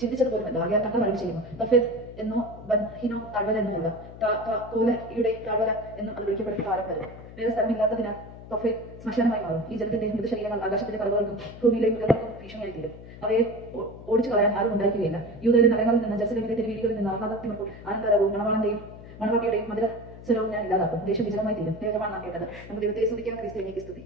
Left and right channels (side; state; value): left; noise; hum, 16 dB below the sound